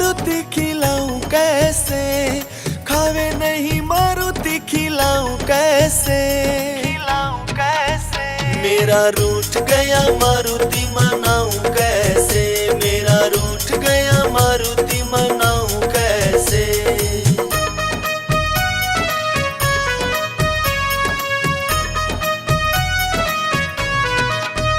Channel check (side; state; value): both; identical; correlation 1.00